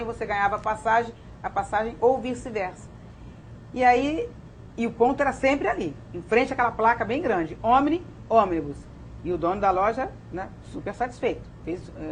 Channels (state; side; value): identical; both; correlation 1.00